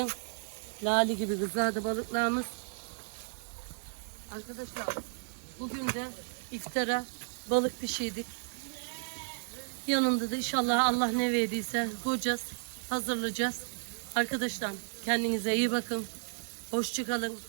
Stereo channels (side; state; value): left; silent; 56 dB below the other